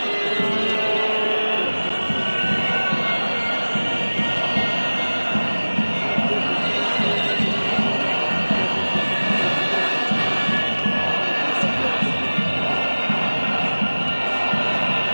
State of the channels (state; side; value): inverted; both; correlation -1.00